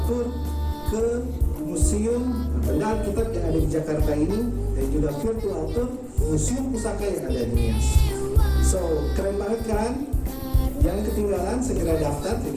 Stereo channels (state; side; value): identical; both; correlation 1.00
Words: tour ke museum benda Alkitab yang ada di Jakarta ini, dan juga virtual tour museum pusaka yang ada di Nias. So keren banget kan? Jangan ketinggalan, segera daftar.